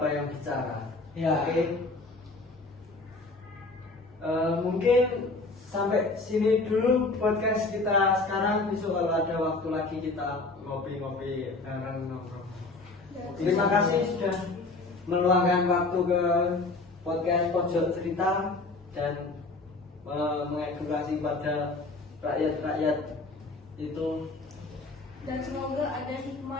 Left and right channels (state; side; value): quieter; right; 3.4 dB